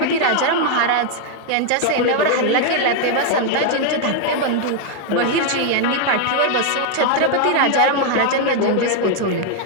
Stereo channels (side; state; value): both; different; correlation 0.00